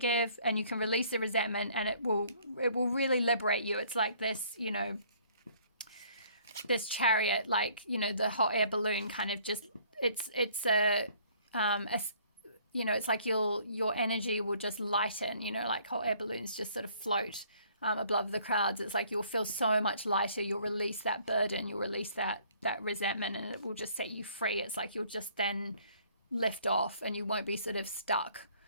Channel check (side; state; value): both; inverted; correlation -0.59